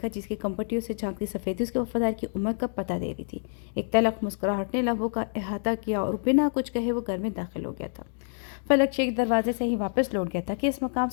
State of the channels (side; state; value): right; silent; digital silence